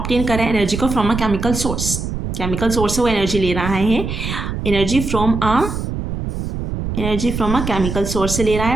कर रहा है एनर्जी को from a chemical source, chemical source से वो एनर्जी ले रहा है, energy from a chemical source से ले रहा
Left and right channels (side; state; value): right; noise; rumble, 4 dB below the sound